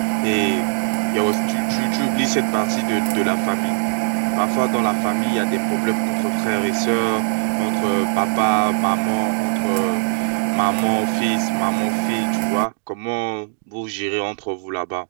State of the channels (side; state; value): left; silent; digital silence